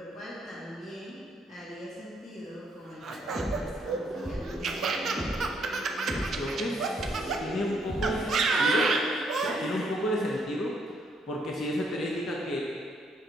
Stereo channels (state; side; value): normal; both; correlation 0.71